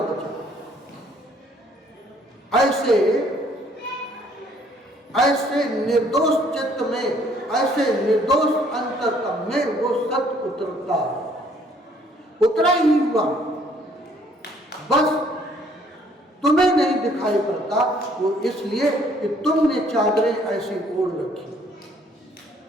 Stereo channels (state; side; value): normal; both; correlation 0.62